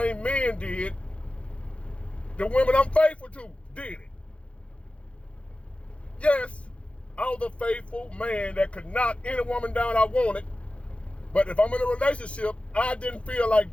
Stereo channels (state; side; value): late; right; 0.061 ms